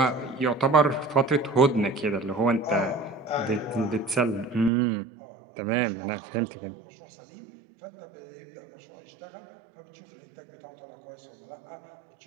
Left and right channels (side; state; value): left; drops out; at 4.7 s